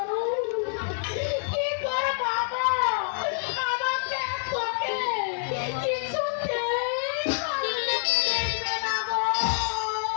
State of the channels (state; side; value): silent; right; 60 dB below the other